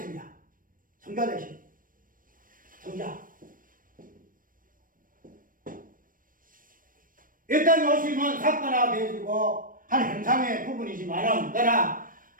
성자 되심. 성자. 이 땅에 오시면 사건화가 되어지고 한 형상의 부분이지만은 그러나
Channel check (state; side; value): late; left; 0.40 ms